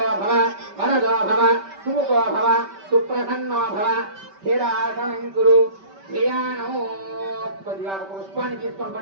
भव वरदो भव सुमुखो भव सुप्रसन्नो भव स्थिरासनं कुरु. ధ్యానో. కొద్దిగా ఒక పుష్పాన్ని తీసుకొని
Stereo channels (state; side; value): late; left; 5.2 ms